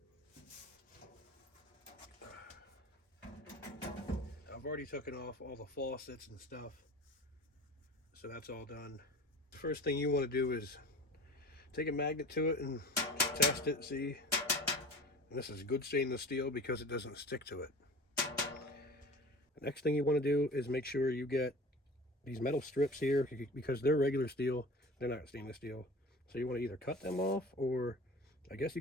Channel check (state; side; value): normal; both; correlation 0.39